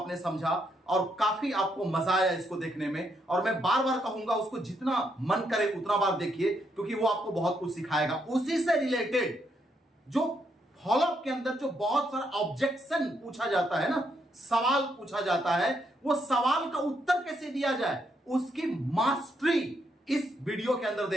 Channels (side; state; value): both; normal; correlation 0.77